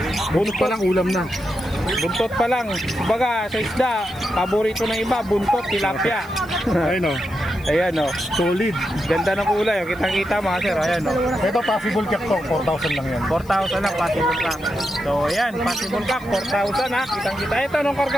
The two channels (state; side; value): noise; left; hiss, 25 dB below the sound